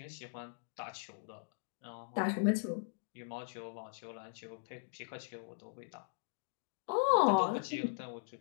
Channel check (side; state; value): right; silent; digital silence